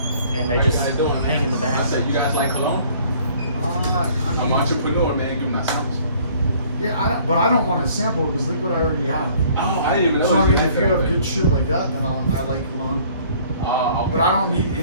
and they How just you guys doing, hang man? in the back. I said, you guys like cologne? I'm an entrepreneur, man. Give me that service. Yeah, but I don't want to sample it because look what I already have. Oh, I didn't even know. So I mean, had if you that have already. good shit like that, then I like cologne. Okay. But I don't need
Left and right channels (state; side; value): inverted; both; correlation -0.56